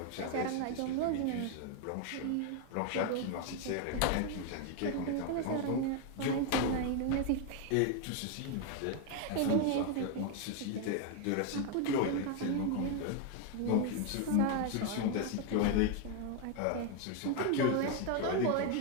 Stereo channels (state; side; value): different; both; correlation 0.01